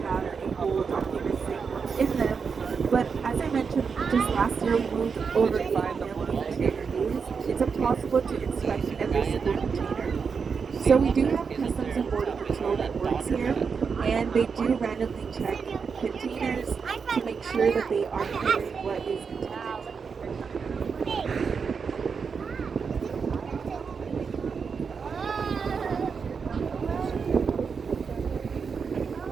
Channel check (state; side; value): quieter; left; 5.7 dB